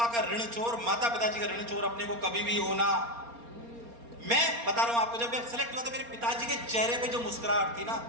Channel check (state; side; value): late; left; 4.3 ms